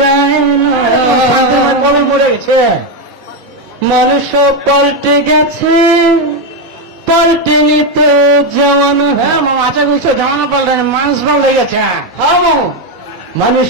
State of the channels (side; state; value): both; normal; correlation 0.07